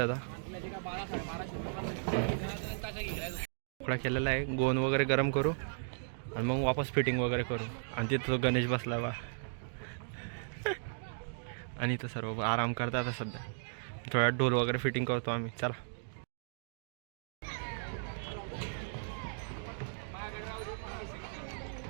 आता. तुकडा केलेला आहे. गोंद वगैरे गरम करू आणि मग वापस फिटिंग वगैरे करू. आणि तिथं गणेश बसला बा आणि इथं सर्व आराम करतात आता सध्या. थोड्या ढोल वगैरे फिटिंग करतो आम्ही. चला.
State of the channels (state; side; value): silent; left; digital silence